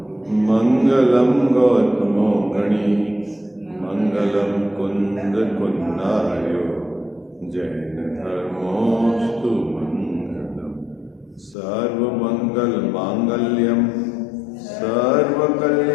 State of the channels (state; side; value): drops out; right; at 11.6 s